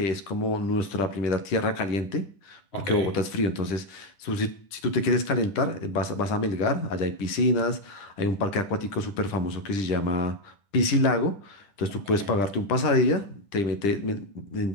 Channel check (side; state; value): right; late; 10 ms